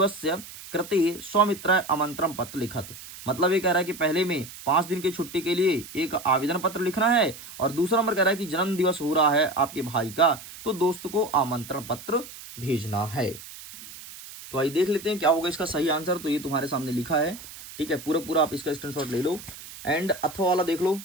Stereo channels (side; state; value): right; noise; hiss, 15 dB below the sound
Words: कृते स्वमित्र आमंत्रण पत्र लिखत, मतलब ये कह रहा है कि पहले में 5 दिन की छुट्टी के लिए एक आवेदन पत्र लिखना है, और दूसरा नंबर कह रहा है कि जन्म दिवस हो रहा है आपके भाई का, तो दोस्त को आमंत्रण पत्र भेजना है। तो आइए देख लेते हैं क्या होगा इसका सही आंसर। तो ये तुम्हारे सामने लिखा है, ठीक है, पूरा पूरा आप इसका स्क्रीनशॉट ले लो, एंड अथवा वाला देख लो,